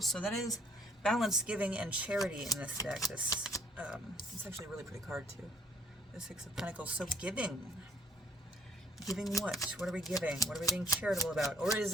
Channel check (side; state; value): both; normal; correlation 0.61